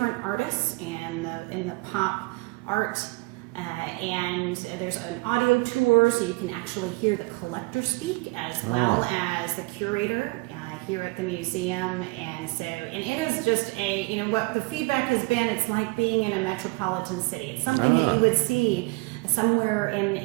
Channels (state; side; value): quieter; left; 26.3 dB